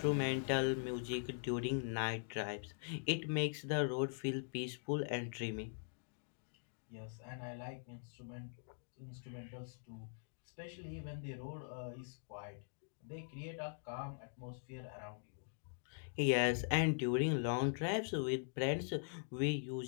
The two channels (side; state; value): right; silent; digital silence